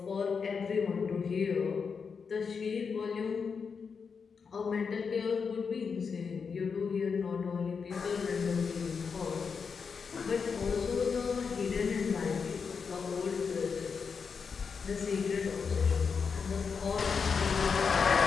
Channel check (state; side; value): quieter; right; 5.7 dB